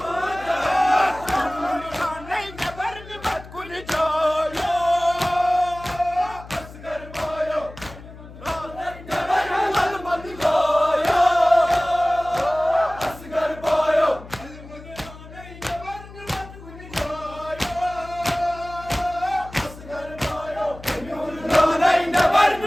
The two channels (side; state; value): left; noise; hum, 17 dB below the sound